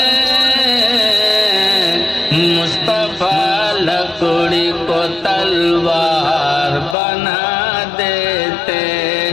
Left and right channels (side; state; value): right; drops out; at 7.0 s